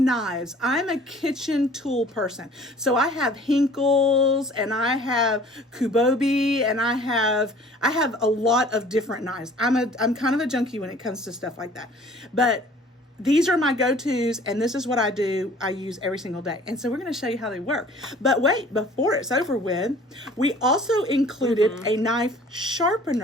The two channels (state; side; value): normal; both; correlation 0.51